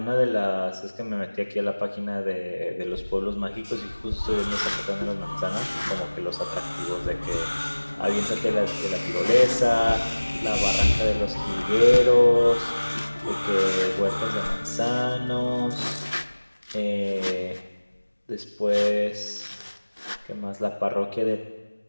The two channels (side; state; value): both; inverted; correlation -1.00